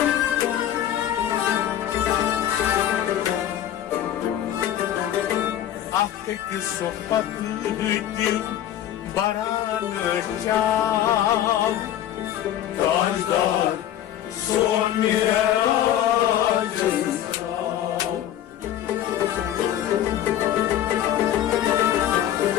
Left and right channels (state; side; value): quieter; right; 11.4 dB